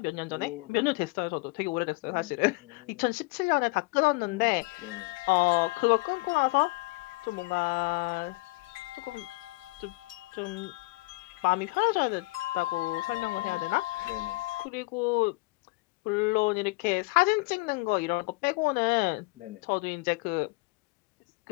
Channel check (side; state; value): right; quieter; 24.7 dB